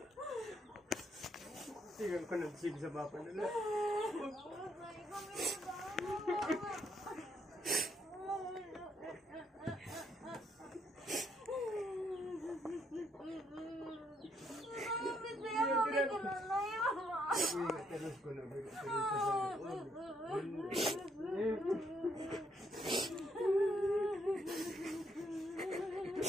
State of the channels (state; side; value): normal; both; correlation 0.73